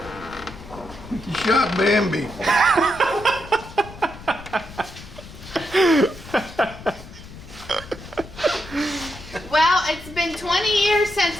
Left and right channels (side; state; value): left; noise; rumble, 16 dB below the sound